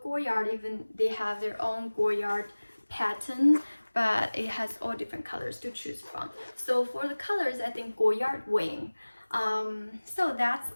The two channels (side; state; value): both; inverted; correlation -1.00